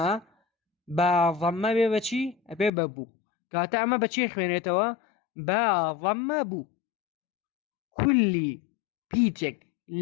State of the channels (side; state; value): right; drops out; at 2.7 s